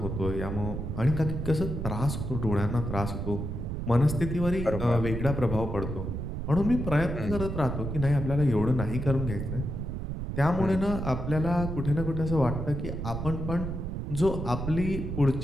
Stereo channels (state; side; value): noise; right; rumble, 4 dB below the sound